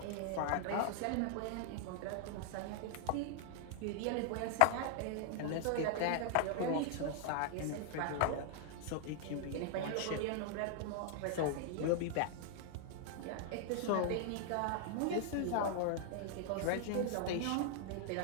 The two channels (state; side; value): different; both; correlation 0.00